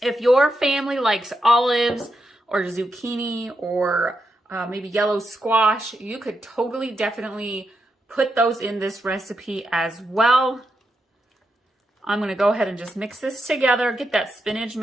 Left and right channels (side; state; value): both; normal; correlation 0.84